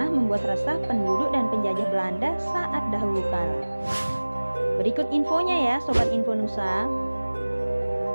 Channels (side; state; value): both; inverted; correlation -1.00